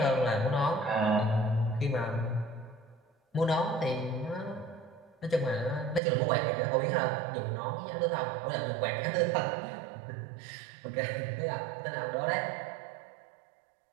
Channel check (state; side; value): drops out; left; at 6.0 s